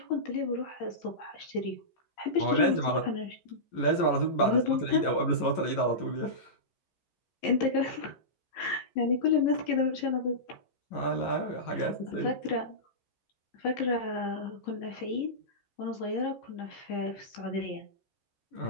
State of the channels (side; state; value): right; late; 11 ms